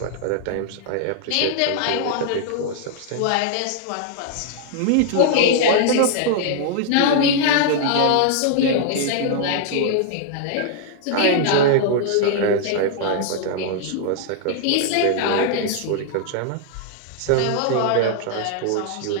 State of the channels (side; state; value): both; different; correlation -0.01